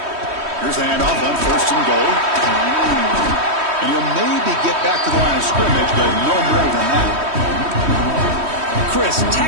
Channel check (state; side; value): late; left; 3.1 ms